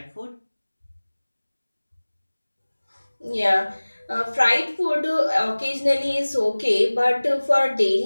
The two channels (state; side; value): inverted; both; correlation -1.00